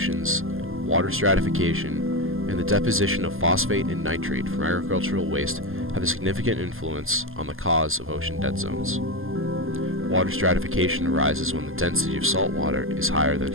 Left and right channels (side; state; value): left; late; 0.60 ms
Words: water stratification, and the deposition of phosphate and nitrate from agricultural waste have a significant influence on the cause of ocean dead zones. Water stratification arises when the density of salt water is higher than